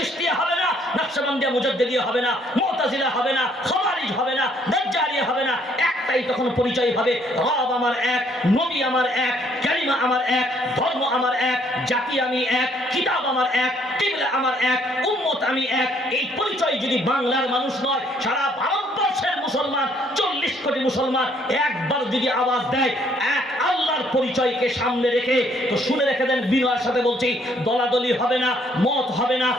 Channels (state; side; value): normal; both; correlation 0.65